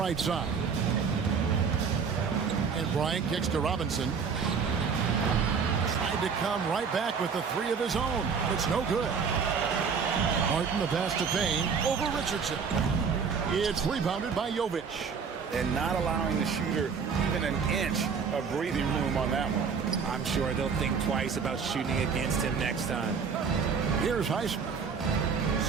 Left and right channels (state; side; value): quieter; left; 5.9 dB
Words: side. And Bryant kicks to Robinson. Tried to come right back with the 3 of his own. It's no good. Martin the pass to Payne over Richardson. It's rebounded by Jovic. And not allowing the shooter even an inch of breathing room on that one. I'm sure they'll think twice about shooting against him next time. Here's Highsmith.